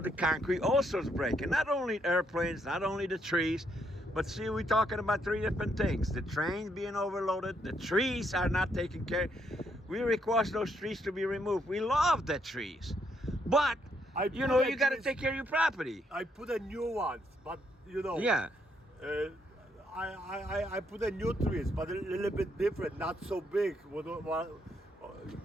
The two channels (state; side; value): normal; both; correlation 0.74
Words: the concrete also is breaking. Not only airplanes, not only the trees, but see, we're talking about 3 different things. The trains being overloaded, the trees are not taken care. We request those trees to be removed. We love the trees. But, you know, you got to take care of your property. I put a new ones, but, you know. Yeah. I put a new trees, but a little bit different, not so big.